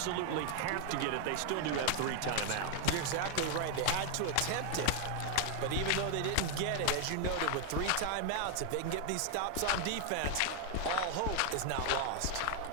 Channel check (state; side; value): different; both; correlation 0.00